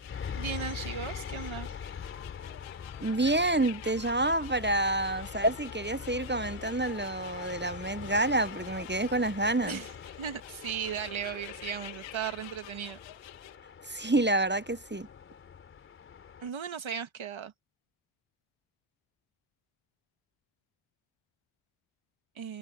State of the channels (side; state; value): both; normal; correlation -0.03